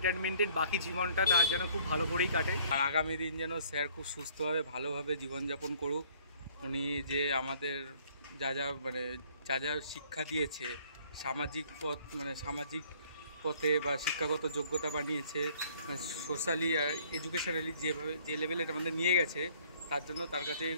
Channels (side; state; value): both; inverted; correlation -0.59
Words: বাকি জীবনটা তার যেন খুব ভালো করেই কাটে, আর আগামী দিন যেন স্যার খুব সুস্থভাবে ভালোভাবে জীবনযাপন করুক। উনি যে আমাদের যা যা শিক্ষা দিয়েছে, সামাজিক পথে বা শিক্ষাগত যোগ্যতা বানিয়েছে, সোশ্যালি আর এডুকেশনালি যে লেভেলে আমাদের নিয়ে গেছে, তার জন্য তার কাছে